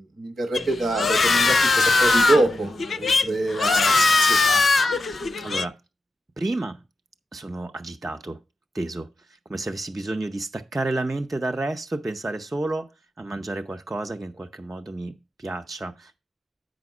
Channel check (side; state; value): both; normal; correlation 0.89